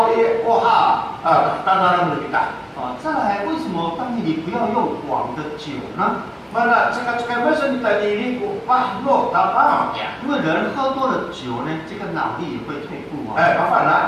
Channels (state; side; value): identical; both; correlation 1.00